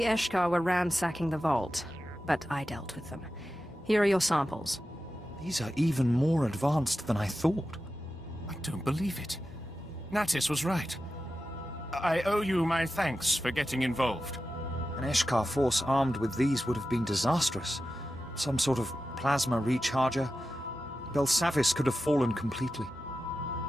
Eshkar were ransacking the vault, but I dealt with them. Here are your samples. These are even more advanced than I thought. I don't believe it. Natis was right. I owe you my thanks for getting involved. An Eshkar force armed with these would have been disastrous. Some sort of plasma recharger. Belsavis could have fallen completely.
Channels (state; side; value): normal; both; correlation 0.92